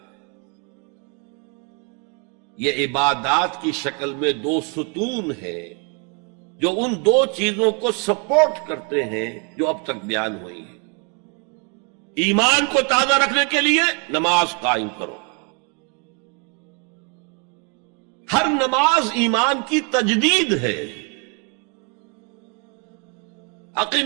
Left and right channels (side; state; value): left; quieter; 34.7 dB